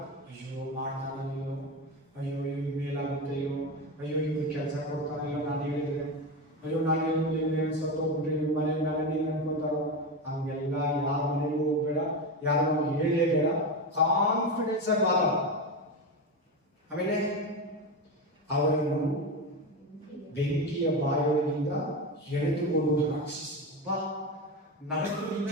ಅಯ್ಯೋ ಮಾಡ್ತಾನೋ, ಅಯ್ಯೋ ಇವ್ರು ಮೇಲಾಗುತ್ತೆಯೋ, ಅಯ್ಯೋ ಇವ್ರು ಕೆಲಸ ಕೊಡ್ತಾನೋ, ನಾನು ಹೇಳಿದ್ರೆ, ಅಯ್ಯೋ ನಾನು ಹೇಳಿದ್ರೆ ಸತ್ತೋಗ್ಬಿಟ್ರೆ ಇವ್ರ ಮನೆ ಮೇಲೆ ನೀನು ಅನ್ಕೊಂತಾರೋ. ಹಂಗೆಲ್ಲ ಯಾರ ಮನೆಗೂ ಹೋಗ್ಬೇಡ, ಯಾರು ಹೇಳಲೇಬೇಡ. ಕಾನ್ಫಿಡೆನ್ಸ್ ಆಗಿ ಮಾತಾಡ. ಆಮೇಲೆ ಅವರನ್ನು ಬೆಂಕಿಯ ಬಾಯೊಳಗಿಂದ ಎಳೆದುಕೊಂಡು ರಕ್ಷಿಸಿ. ನರಕದಿಂದ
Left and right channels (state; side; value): normal; both; correlation 0.18